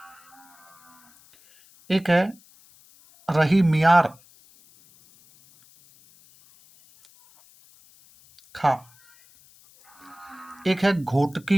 एक है रही मियार खा, एक है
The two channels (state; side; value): noise; left; hiss, 28 dB below the sound